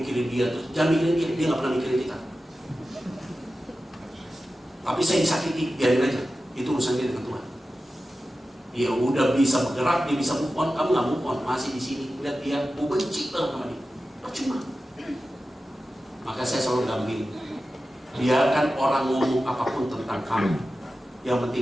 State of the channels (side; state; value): both; normal; correlation 0.93